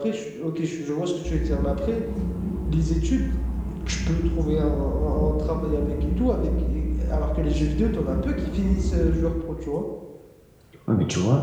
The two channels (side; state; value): both; identical; correlation 1.00